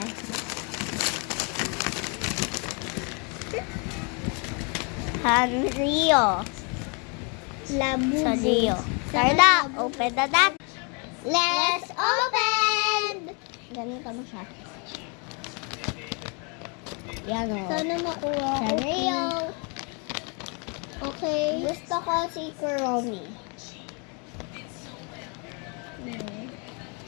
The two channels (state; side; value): quieter; right; 34.6 dB